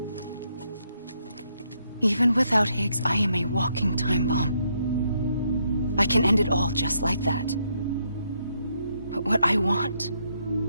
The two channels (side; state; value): both; inverted; correlation -0.76